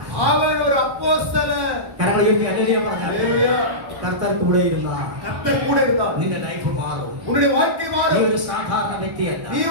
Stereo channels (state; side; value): late; left; 1.1 ms